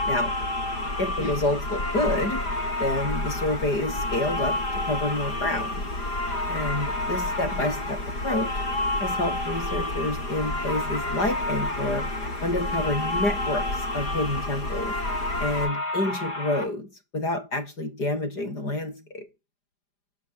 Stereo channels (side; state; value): right; late; 5.0 ms